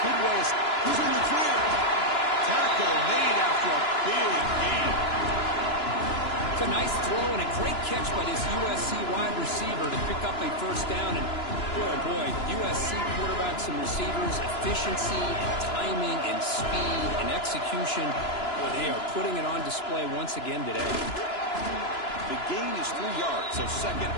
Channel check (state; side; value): late; right; 2.9 ms